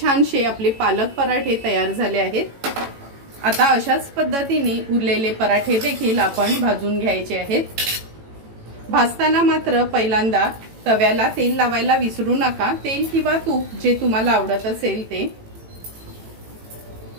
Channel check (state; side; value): late; left; 18 ms